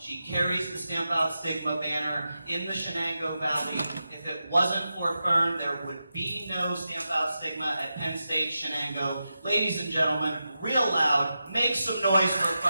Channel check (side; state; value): both; inverted; correlation -0.90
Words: carries the Stamp Out Stigma banner in the Shanangoe Valley. If it wasn't for Fern, there would be no Stamp Out Stigma at Penn State, Shanangoe. Ladies and gentlemen, real loud, make some noise for